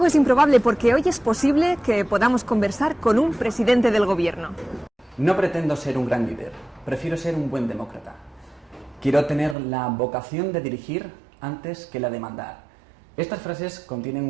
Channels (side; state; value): left; drops out; at 9.6 s